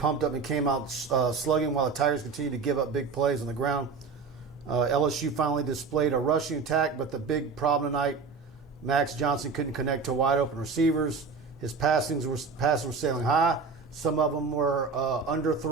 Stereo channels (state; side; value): quieter; left; 4.9 dB